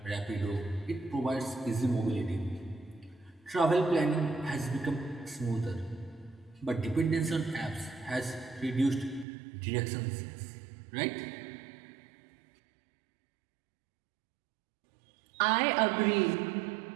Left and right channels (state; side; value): drops out; left; at 9.2 s